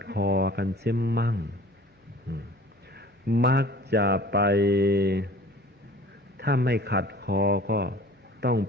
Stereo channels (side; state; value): both; normal; correlation 0.47